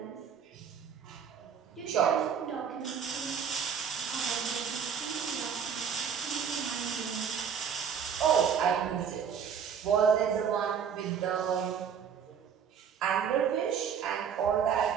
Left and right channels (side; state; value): left; quieter; 7.4 dB